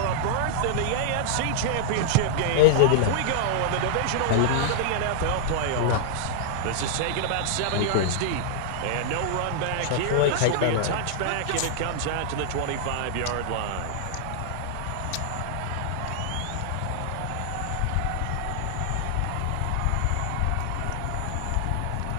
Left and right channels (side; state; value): both; different; correlation -0.01